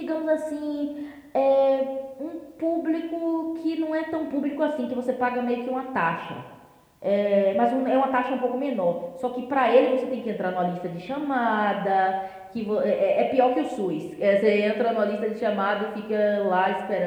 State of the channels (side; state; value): both; identical; correlation 1.00